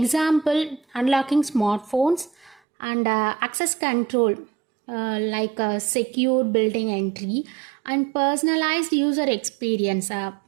unlocking smartphones and access control like secure building entry and personalized user experience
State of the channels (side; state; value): left; drops out; at 2.6 s